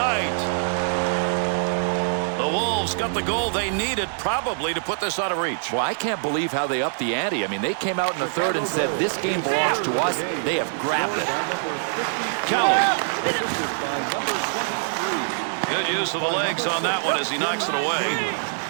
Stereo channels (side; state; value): left; silent; 56 dB below the other